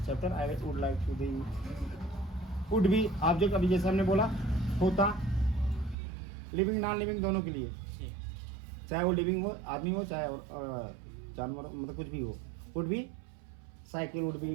chapter, I would like to the would भी object, अभी जैसे हमने बोला होता, लिविंग नॉन लिविंग दोनों के लिए, जी. चाहे वो लिविंग हो, आदमी हो, चाहे और जानवर, मतलब कुछ भी हो। वुड भी साइकिल, वुड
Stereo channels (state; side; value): drops out; left; at 6.0 s